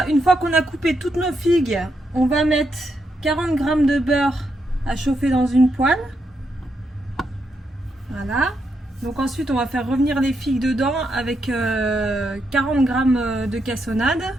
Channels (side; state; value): both; normal; correlation 0.81